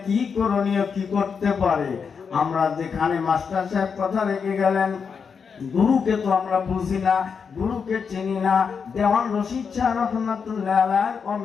কি করণীয়, কি করতে পারে? আমরা যেখানে মাস্টার সাহেব কথা রেখে গেলেন, গুরুকে তো আমরা বুঝি না, গুরুকে চিনি না। দেওয়ান রশিদ শাহ রহমাতুল্লাহ আলাইহির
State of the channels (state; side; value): quieter; right; 6.1 dB